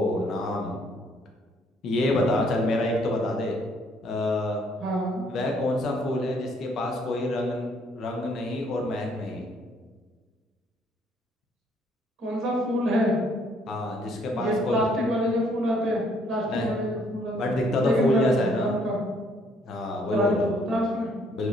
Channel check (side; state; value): both; normal; correlation 0.66